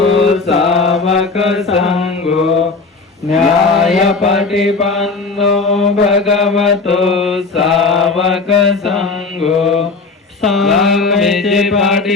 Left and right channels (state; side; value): quieter; right; 4.1 dB